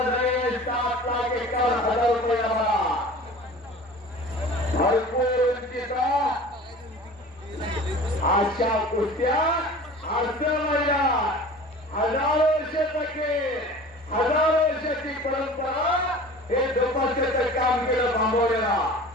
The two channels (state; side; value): normal; both; correlation 0.41